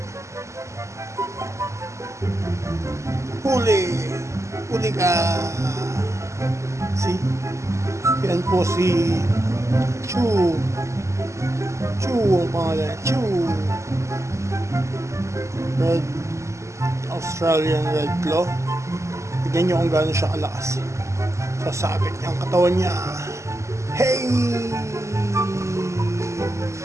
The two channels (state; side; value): late; left; 0.14 ms